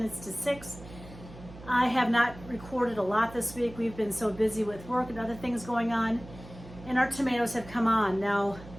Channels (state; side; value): noise; right; hum, 17 dB below the sound